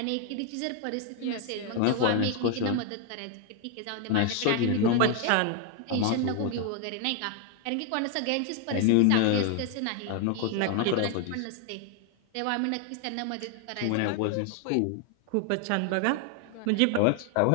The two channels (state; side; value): different; both; correlation 0.00